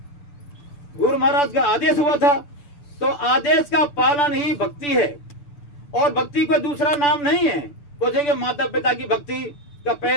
गुरु महाराज का आदेश हुआ था, तो आदेश का पालन ही भक्ति है, और भक्ति कोई दूसरा नाम नहीं है। सोचेंगे माता पिता की भक्ति का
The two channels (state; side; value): late; right; 6.9 ms